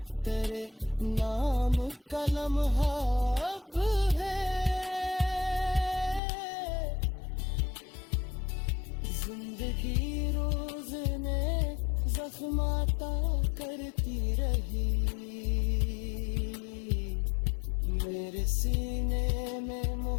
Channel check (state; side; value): drops out; right; at 6.2 s